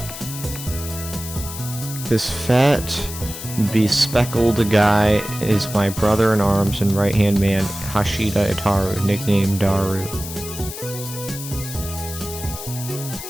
This fat, bespectacled guy is my brother in arms and right-hand man, Hashida Itaru, nicknamed Daru.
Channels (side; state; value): left; noise; hiss, 10 dB below the sound